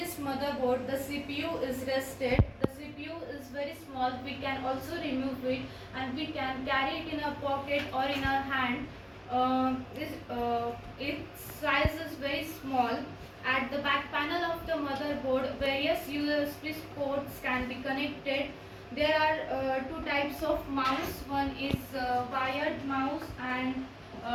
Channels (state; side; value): identical; both; correlation 1.00